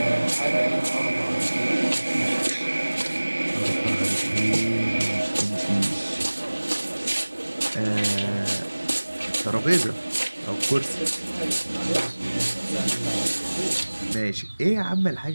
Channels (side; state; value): both; inverted; correlation -1.00